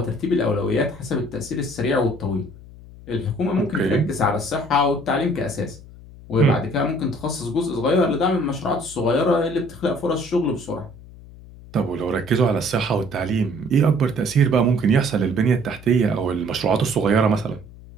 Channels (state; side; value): noise; left; hum, 19 dB below the sound